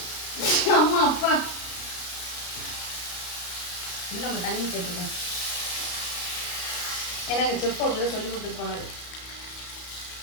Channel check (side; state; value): right; late; 33 ms